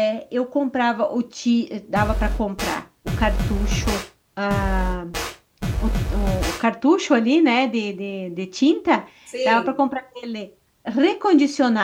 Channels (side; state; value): both; identical; correlation 1.00